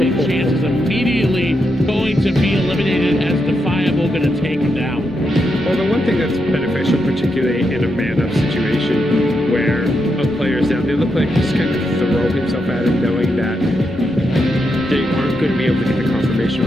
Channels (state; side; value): normal; both; correlation 0.83